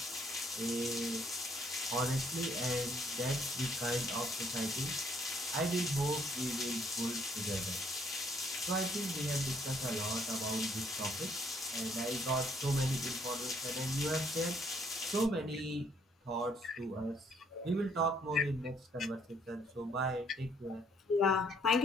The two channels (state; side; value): normal; both; correlation 0.66